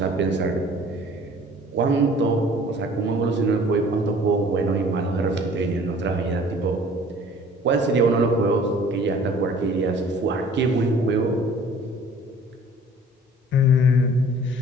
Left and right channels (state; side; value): normal; both; correlation 0.51